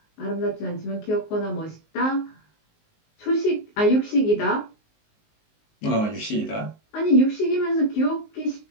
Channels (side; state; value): right; late; 19 ms